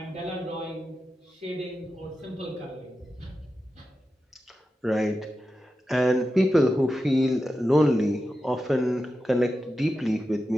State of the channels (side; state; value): both; normal; correlation 0.91